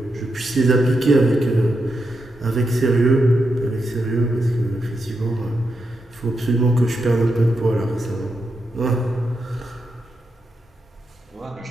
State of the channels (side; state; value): both; normal; correlation 0.85